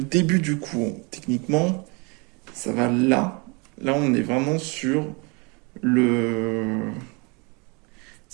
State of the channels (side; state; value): left; quieter; 30.3 dB